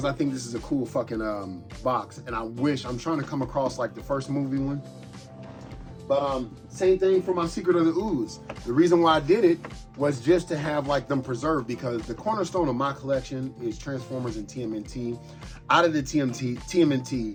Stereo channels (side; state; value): both; identical; correlation 1.00